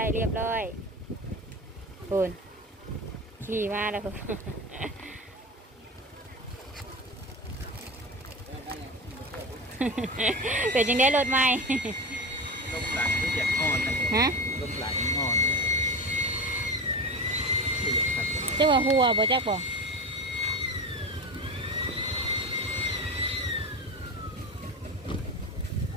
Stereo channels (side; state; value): both; normal; correlation 0.26